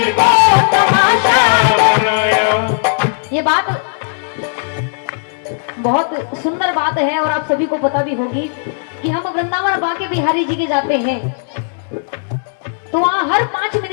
को तमाशा बनाया। ये बात बहुत सुंदर बात है और आप सभी को पता भी होगी कि हम वृंदावन बांके बिहारी जी के जाते हैं तो वहाँ हर 5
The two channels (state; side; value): silent; right; digital silence